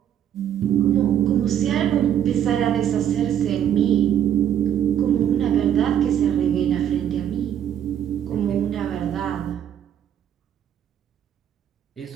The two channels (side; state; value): left; quieter; 9.9 dB